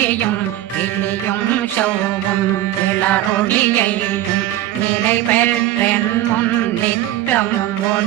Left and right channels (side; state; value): left; quieter; 14.0 dB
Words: கிளியும் சௌவும் கிளரொளியையும் நிலை பெற்றென் முன் நித்தம்